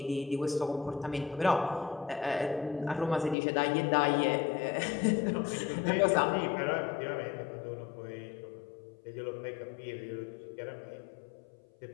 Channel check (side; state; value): right; drops out; at 3.4 s